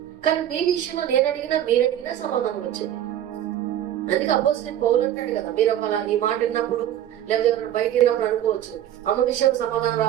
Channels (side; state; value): left; quieter; 11.3 dB